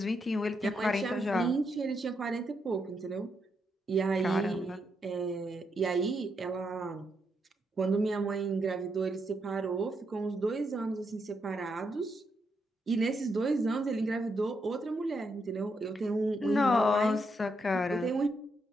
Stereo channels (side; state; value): both; normal; correlation 0.80